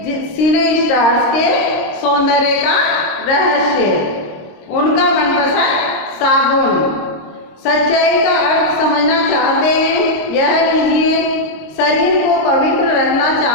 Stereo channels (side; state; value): right; late; 26 ms